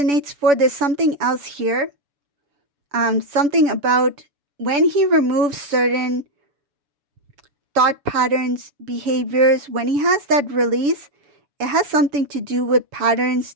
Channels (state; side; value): late; left; 7.0 ms